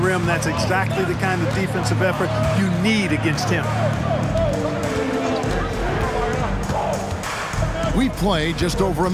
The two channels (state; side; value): identical; both; correlation 1.00